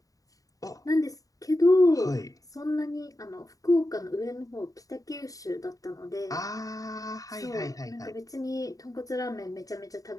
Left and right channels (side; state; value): right; late; 0.17 ms